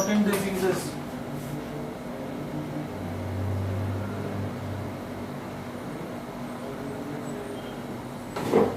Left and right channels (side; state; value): both; identical; correlation 1.00